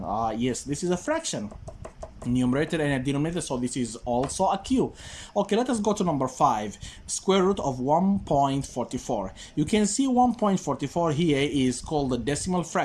Yes, this is a fraction. Numerator and a denominator, so this is also a Q. Okay, let us go to number 5, square root of 1.44. You can see 1.44 here is called a decimal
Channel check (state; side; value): identical; both; correlation 1.00